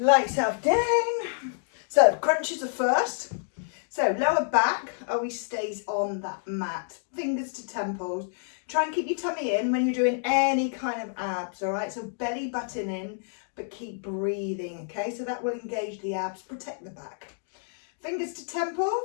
yourself down. So crunches are first. So lower back always stays on that mat, fingers to temples. Try and keep your tummy in when you're doing any kind of abs, all right? So belly button in, but keep breathing, okay? So that will engage the abs, protect the back. Fingers to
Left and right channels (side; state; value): right; silent; digital silence